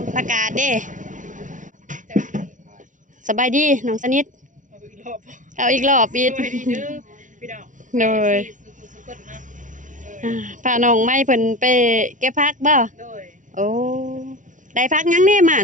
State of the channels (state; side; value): late; left; 0.37 ms